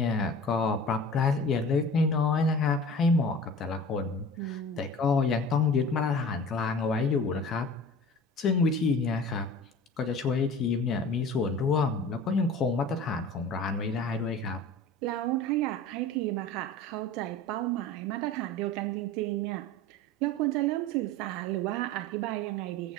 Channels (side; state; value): both; normal; correlation 0.39